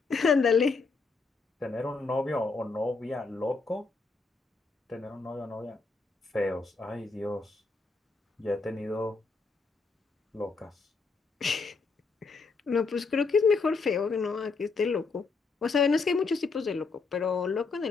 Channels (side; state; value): right; quieter; 4.3 dB